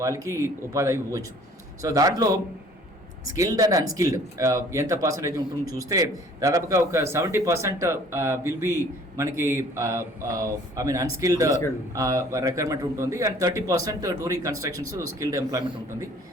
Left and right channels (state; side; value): normal; both; correlation 0.54